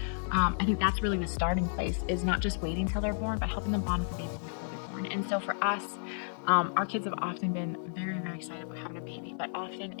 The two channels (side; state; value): right; silent; digital silence